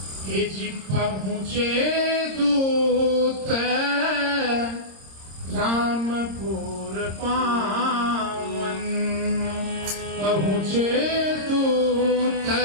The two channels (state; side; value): late; left; 26 ms